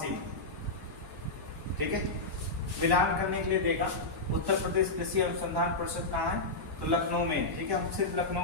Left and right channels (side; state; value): right; quieter; 3.1 dB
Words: में। ठीक है, मिलान करने के लिए देगा। उत्तर प्रदेश कृषि अनुसंधान परिषद कहाँ है? तो लखनऊ में। ठीक है, हम सिर्फ लखनऊ